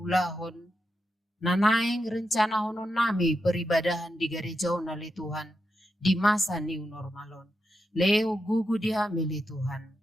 Nanaing rencana honon nami peribadahan di gerejaon ali Tuhan. Di masa new normalon. Leo gugu di hami ali Tuhan.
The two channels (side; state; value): both; normal; correlation 0.86